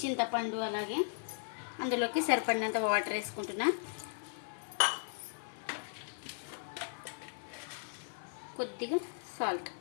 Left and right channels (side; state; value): right; silent; digital silence